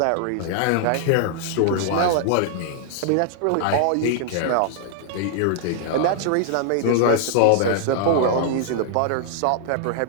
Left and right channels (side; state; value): both; different; correlation -0.01